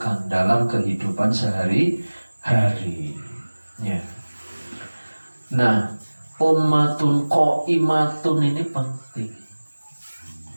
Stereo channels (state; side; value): inverted; both; correlation -1.00